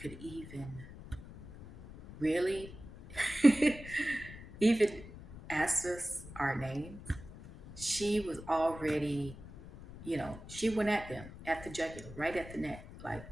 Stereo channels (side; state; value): left; noise; rumble, 15 dB below the sound